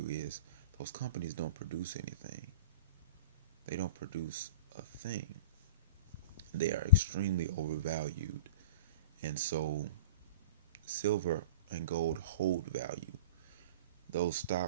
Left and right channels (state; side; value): inverted; both; correlation -0.35